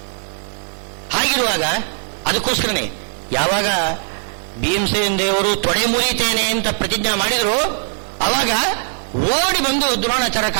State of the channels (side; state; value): left; silent; 57 dB below the other